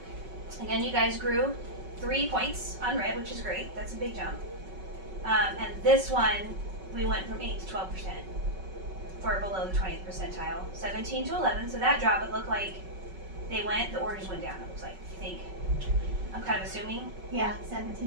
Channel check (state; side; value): late; left; 5.3 ms